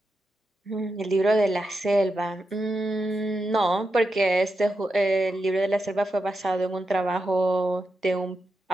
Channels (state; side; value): normal; both; correlation 0.87